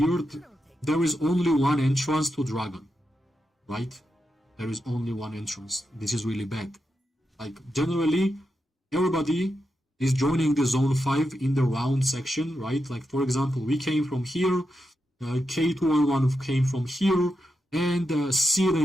There is only one entrance to dragon, right? There is only one entrance. This is really bad. Like, generally, everybody is joining the zone 5 in the round section, right? Like, for example, we came from here, K211 came from here, and Seal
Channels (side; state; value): both; normal; correlation 0.87